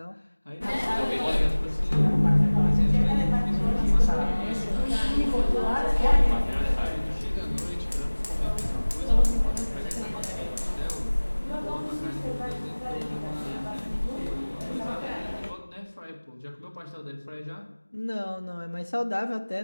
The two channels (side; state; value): both; inverted; correlation -1.00